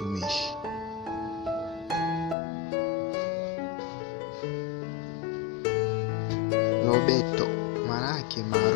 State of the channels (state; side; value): drops out; right; at 2.4 s